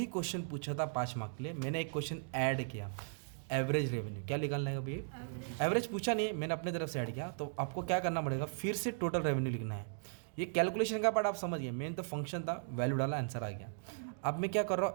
क्वेश्चन पूछा था 5 मार्क के लिए, मैंने एक क्वेश्चन ऐड किया, एवरेज रेवेन्यू। क्या निकालना है अभी? एवरेज पूछा नहीं, मैंने अपने तरफ से ऐड किया। तो आपको क्या करना पड़ेगा? फिर से टोटल रेवेन्यू लिखना है। ये कैलकुलेशन का पार्ट आप समझ गए, मेन तो फंक्शन था, वैल्यू डाला, आंसर आ गया। अब मैं क्या कर रहा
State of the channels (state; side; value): silent; left; digital silence